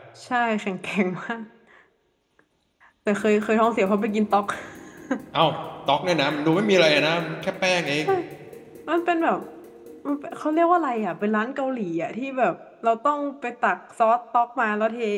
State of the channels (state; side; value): identical; both; correlation 1.00